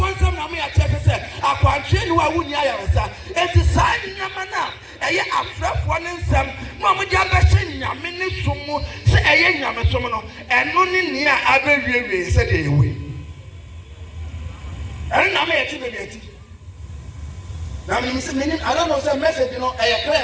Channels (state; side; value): identical; both; correlation 1.00